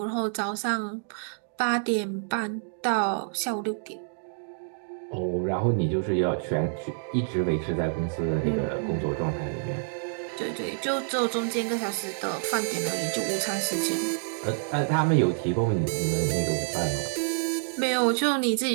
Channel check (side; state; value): left; silent; digital silence